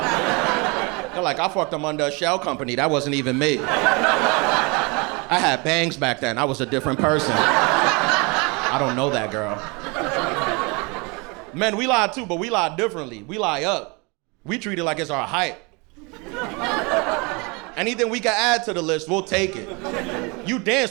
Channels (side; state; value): left; quieter; 28.9 dB